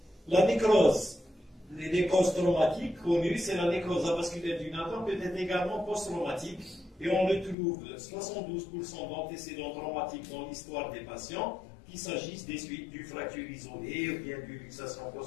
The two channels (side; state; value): right; drops out; at 7.6 s